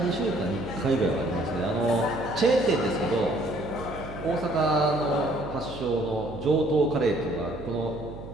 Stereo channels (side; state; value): right; noise; hum, 12 dB below the sound